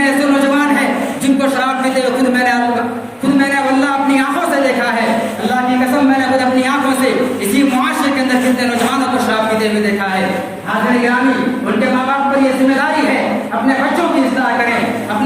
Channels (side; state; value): both; identical; correlation 1.00